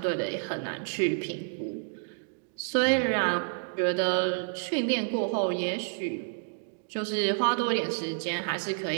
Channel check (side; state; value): left; silent; 58 dB below the other